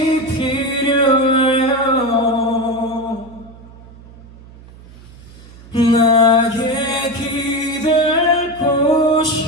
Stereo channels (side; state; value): right; noise; hum, 21 dB below the sound